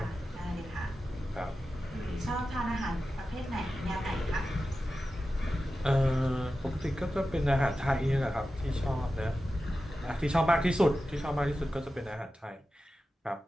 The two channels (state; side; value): normal; both; correlation 0.93